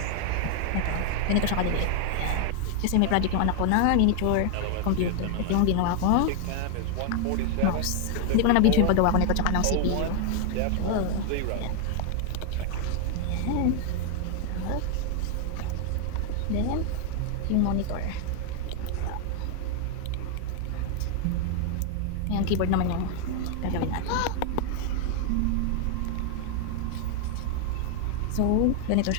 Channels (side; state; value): both; different; correlation 0.00